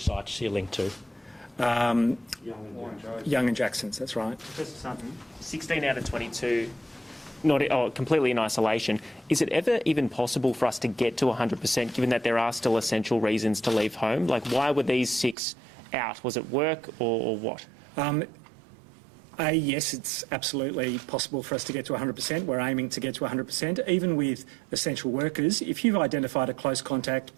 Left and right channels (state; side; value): drops out; left; at 15.4 s